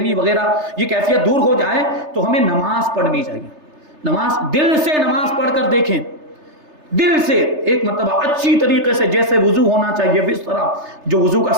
وغیرہ یہ کیفیت دور ہو جائے، تو ہمیں نماز پڑھنی چاہیے۔ نماز، دل سے نماز پڑھ کر دیکھیں، دل سے ایک مرتبہ اچھی طریقے سے، جیسے وضو ہونا چاہیے اس طرح، جو وضو کا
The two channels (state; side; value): late; left; 3.3 ms